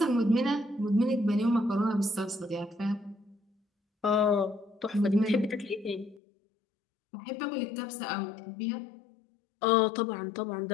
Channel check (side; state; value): right; drops out; at 6.2 s